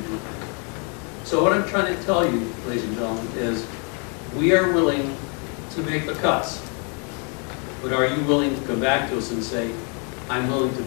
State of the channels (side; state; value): right; quieter; 37.5 dB